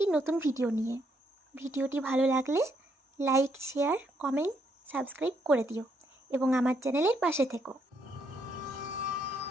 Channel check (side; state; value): both; normal; correlation 0.74